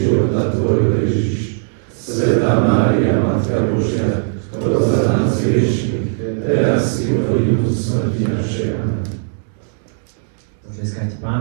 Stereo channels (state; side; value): silent; left; digital silence